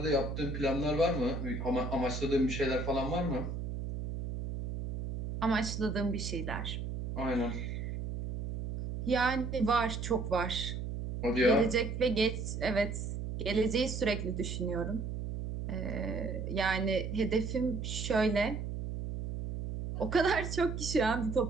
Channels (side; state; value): right; noise; hum, 5 dB below the sound